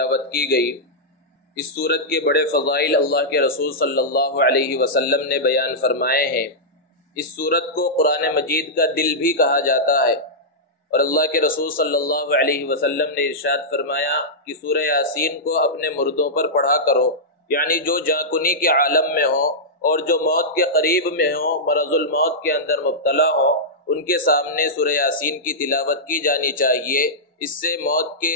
کی گئی۔ اس سورت کے بڑے فضائل اللہ کے رسول صلی اللہ علیہ وسلم نے بیان فرمائے ہیں۔ اس سورت کو قرآن مجید کا دل بھی کہا جاتا ہے، اور اللہ کے رسول صلی اللہ علیہ وسلم نے ارشاد فرمایا کہ سورہ یاسین کو اپنے مردوں پر پڑھا کرو، یعنی جو جاں کے عالم میں ہو اور جو موت کے قریب میں ہوں، مرض الموت کے اندر مبتلا ہوں، ان کے سامنے سورہ یاسین کی تلاوت کی جانی چاہیے۔ اس سے موت کے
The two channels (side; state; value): both; normal; correlation -0.10